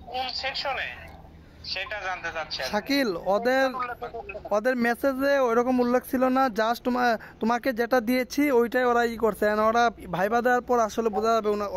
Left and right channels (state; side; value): identical; both; correlation 1.00